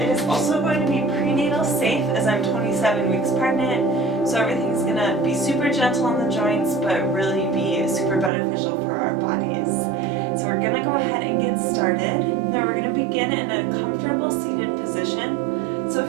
is also going to be prenatal safe as I'm 27 weeks pregnant, so everything's going to be super gentle on the joints but really be super beneficial for our bodies. So we're going to go ahead and get started. Now we're going to begin in a comfortable seated position. So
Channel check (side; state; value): left; drops out; at 8.3 s